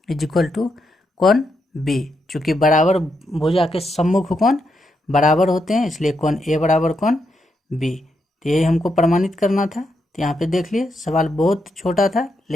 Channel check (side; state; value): both; normal; correlation 0.82